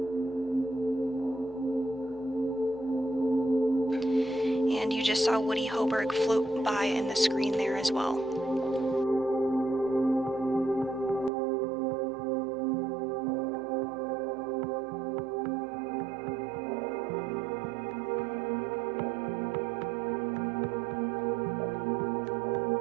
And you just saw Woody Hoberg float by in the screen there as well.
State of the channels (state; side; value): drops out; left; at 11.3 s